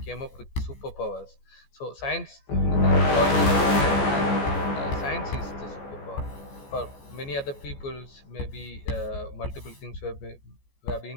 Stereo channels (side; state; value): right; late; 14 ms